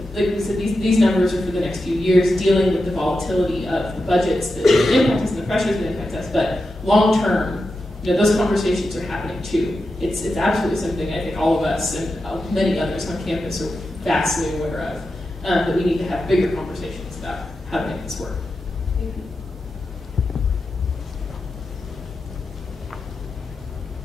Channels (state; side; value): normal; both; correlation 0.89